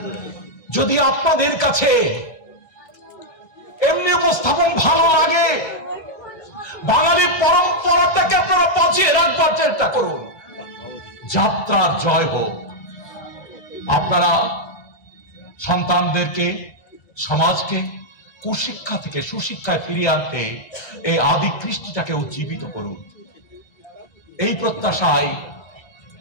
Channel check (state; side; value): late; right; 1.3 ms